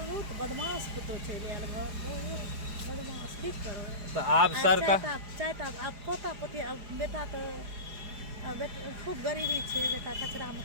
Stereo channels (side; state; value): left; late; 4.9 ms